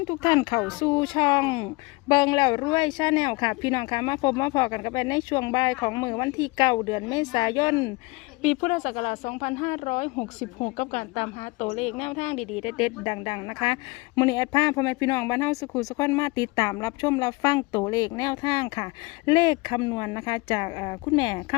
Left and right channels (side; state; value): right; quieter; 25.0 dB